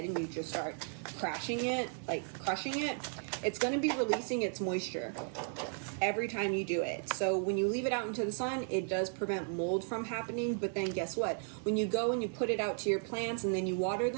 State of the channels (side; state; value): left; silent; 54 dB below the other